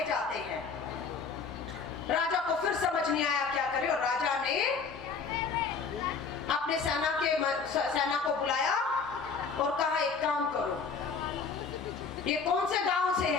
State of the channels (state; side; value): quieter; right; 5.2 dB